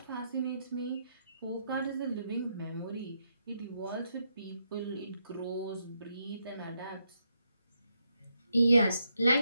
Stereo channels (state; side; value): inverted; both; correlation -0.80